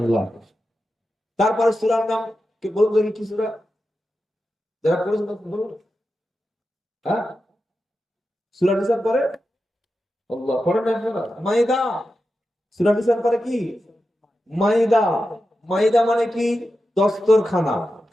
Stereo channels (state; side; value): normal; both; correlation 0.90